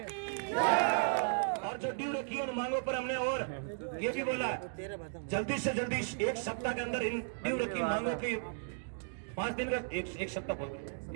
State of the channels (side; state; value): left; silent; digital silence